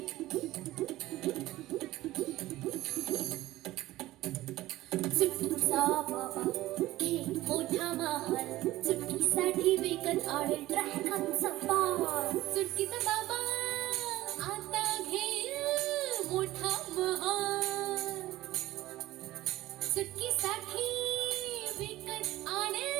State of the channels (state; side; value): quieter; left; 16.7 dB